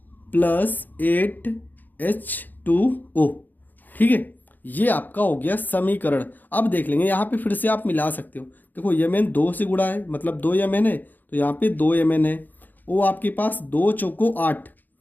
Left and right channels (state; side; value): late; right; 0.086 ms